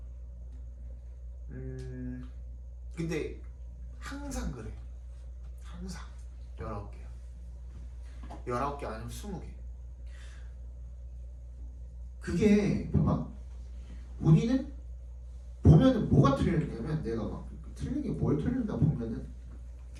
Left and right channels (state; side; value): identical; both; correlation 1.00